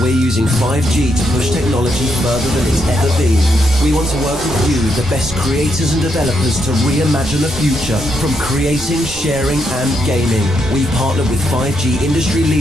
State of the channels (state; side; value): normal; both; correlation 0.79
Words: we're using 5G to push technology further than it's ever been. We want to work with you, the best creators and developers, to reimagine the future from creating, sharing and gaming. We partnered with 5G industry